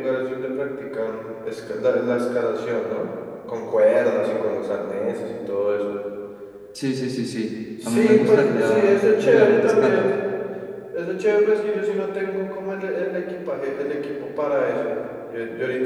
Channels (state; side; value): identical; both; correlation 1.00